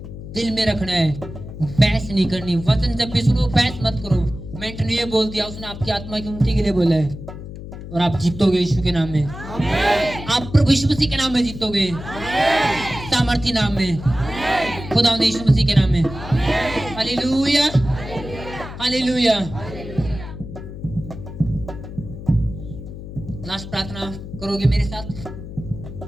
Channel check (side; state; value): left; noise; hum, 11 dB below the sound